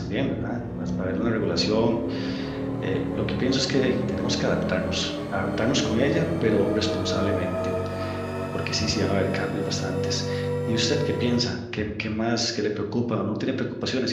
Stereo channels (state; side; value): identical; both; correlation 1.00